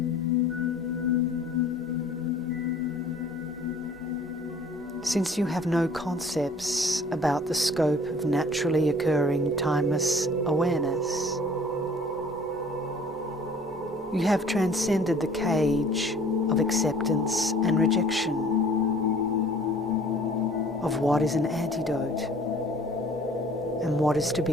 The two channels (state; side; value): normal; both; correlation 0.51